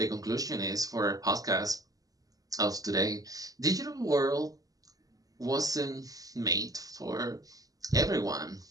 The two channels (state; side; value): late; left; 0.17 ms